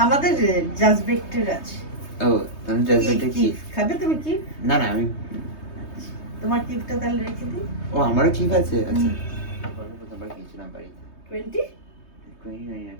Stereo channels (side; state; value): right; late; 3.2 ms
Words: আমাদের জাজবেক্টের আছে। ও তুমি জাজবেক্টে কি? খাবে তুমি কি? না না আমি তোমার কিপটা তাহলে রেখে দিই। ও আমারও ঠিক আছে। আচ্ছা প্রথমবার খেয়েছিলাম বাড়িতে 20